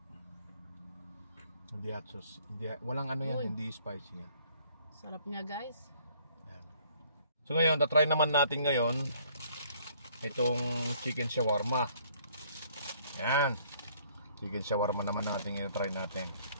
Hindi hot sauce. Walang hindi spicy niya. Sarap niya guys. Yeah. So ngayon, tatry naman natin ngayon itong chicken shawarma. Ayan. Chicken shawarma naman natin i-try natin.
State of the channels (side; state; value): both; inverted; correlation -0.61